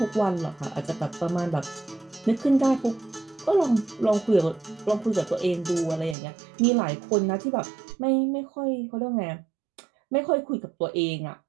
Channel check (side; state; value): left; drops out; at 6.2 s